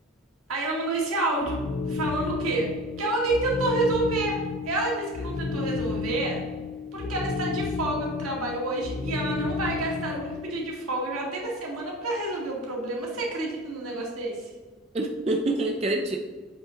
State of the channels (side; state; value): both; normal; correlation 0.35